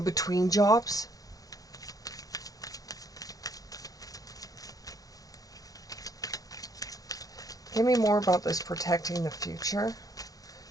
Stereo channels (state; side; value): late; right; 0.17 ms